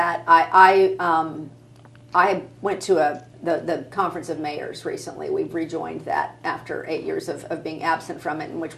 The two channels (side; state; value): both; identical; correlation 1.00